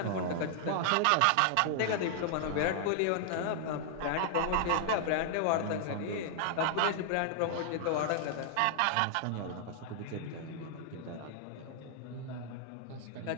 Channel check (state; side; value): different; both; correlation 0.00